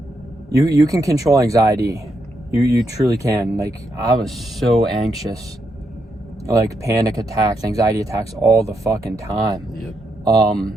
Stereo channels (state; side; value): normal; both; correlation 0.80